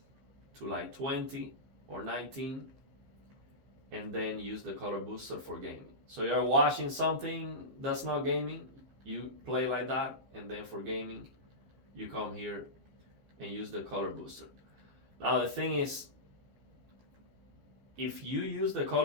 to like 20 or 19 and then use the color booster for gaming. So you're watching something that's not gaming, you play like that, and then for gaming, you come here and use the color booster. Now the thing is, if you use the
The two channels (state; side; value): late; left; 15 ms